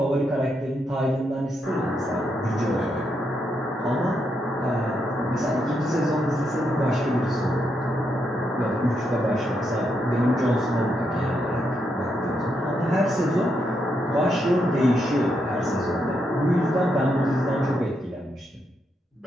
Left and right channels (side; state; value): both; normal; correlation 0.80